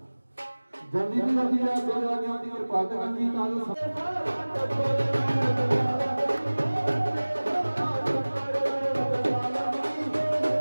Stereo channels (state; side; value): inverted; both; correlation -1.00